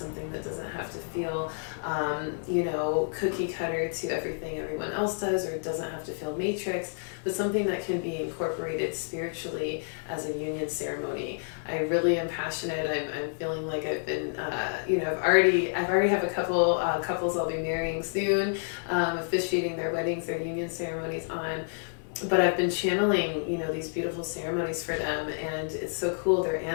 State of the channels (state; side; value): silent; right; digital silence